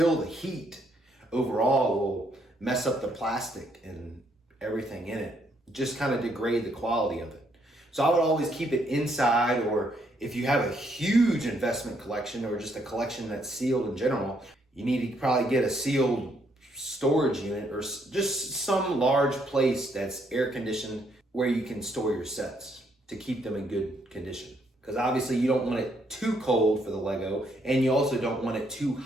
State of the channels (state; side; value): normal; both; correlation 0.72